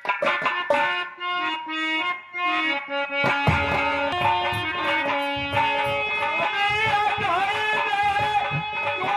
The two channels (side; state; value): both; identical; correlation 1.00